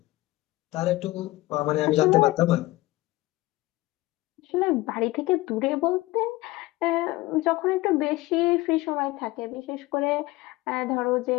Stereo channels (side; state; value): right; quieter; 19.3 dB